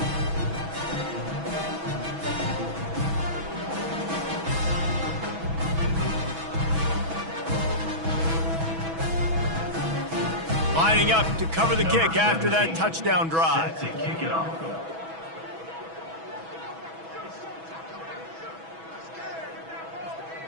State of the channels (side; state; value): left; late; 6.1 ms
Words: Lining up to cover the kick after that touchdown drive. Set to kick it off.